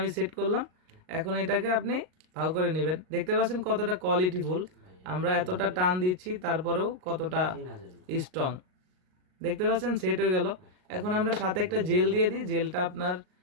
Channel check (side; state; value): left; late; 39 ms